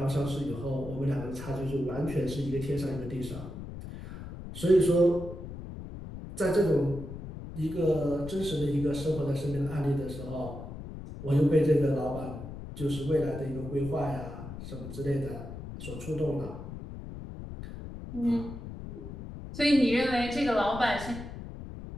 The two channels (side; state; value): left; noise; rumble, 10 dB below the sound